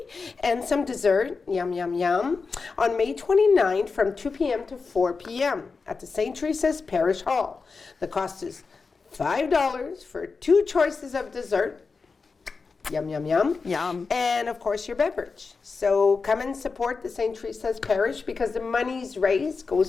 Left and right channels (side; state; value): right; quieter; 4.6 dB